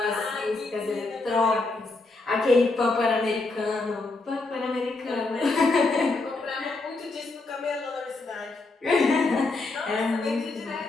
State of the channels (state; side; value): quieter; right; 3.4 dB